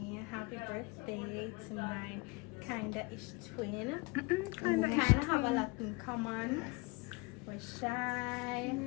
happy birthday to my kinda-ish twin. We kinda have a lot in common. We're shy.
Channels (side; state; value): right; quieter; 26.4 dB